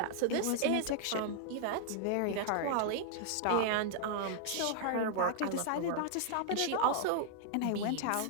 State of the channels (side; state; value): both; different; correlation 0.00